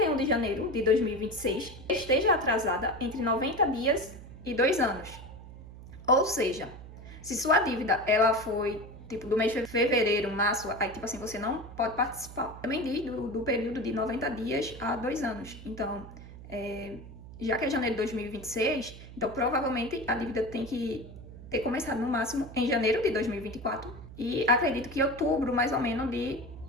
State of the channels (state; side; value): noise; right; hum, 15 dB below the sound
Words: de janeiro de 2026, esteja atrasada entre 90 dias e 2 anos. Ou seja, se sua dívida ela foi tipo do mês de fevereiro, março, aí tipo assim, você não pode participar. Também diz do período de 90 dias a 2 anos. Então, já que é janeiro de 2026, então provavelmente a dívida tem que ter começado no máximo em janeiro de 2024 e acredito que outubro mais ou menos de